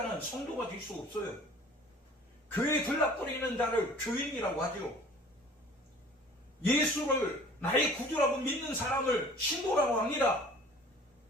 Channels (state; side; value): normal; both; correlation 0.48